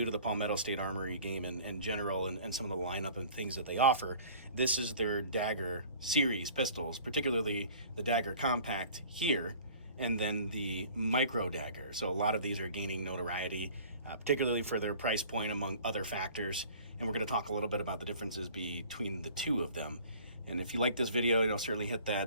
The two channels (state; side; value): inverted; both; correlation -0.48